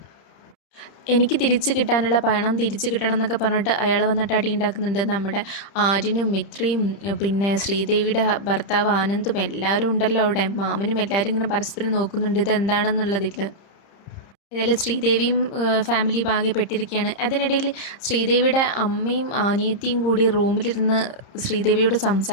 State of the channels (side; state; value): right; late; 30 ms